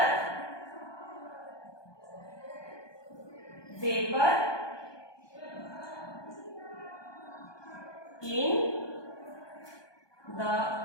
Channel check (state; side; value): late; right; 1.2 ms